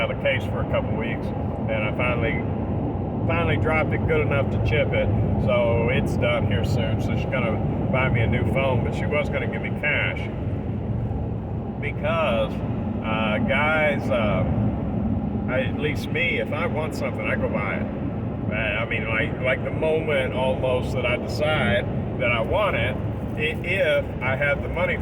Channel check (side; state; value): both; identical; correlation 1.00